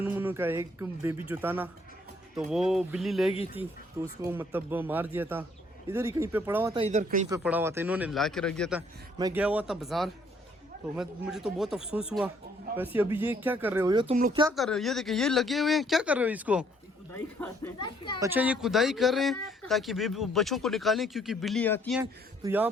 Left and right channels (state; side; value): normal; both; correlation 0.65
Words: मुनु का एक बेबी जो था ना, तो वो बिल्ली ले गई थी, तो उसको मतलब मार दिया था। इधर ही कहीं पे पड़ा हुआ था, इधर कहीं पे पड़ा हुआ था, इन्होंने ला के रख दिया था। मैं गया हुआ था बाजार, तो मुझे तो बहुत अफसोस हुआ। वैसे अभी ये क्या कर रहे हो, ये तुम लोग क्या कर रहे हो? ये देखिए, ये लगे हुए हैं, क्या कर रहे हो इसको? अच्छा, ये खुदाई कर रहे हैं ताकि बच्चों को निकालें, क्योंकि बिल्ली आती हैं। तो यहाँ